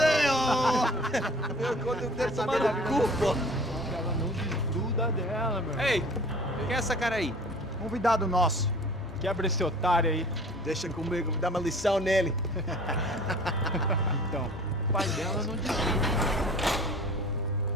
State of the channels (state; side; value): normal; both; correlation 0.46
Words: ó. Meu conta, eu quero tomar no cu, pô. Ela não desgruda dela, meu. Ei, quem é essa cara aí? Convidado nosso. Quebra esse otário aí. Deixa comigo, vou dar uma lição nele. Então, o pai dela não desgruda.